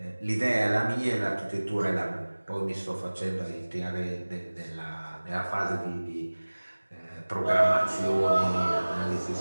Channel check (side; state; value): both; inverted; correlation -1.00